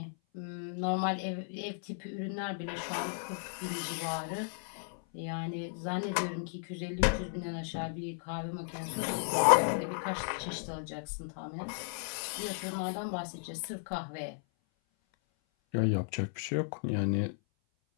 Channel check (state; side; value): silent; right; 55 dB below the other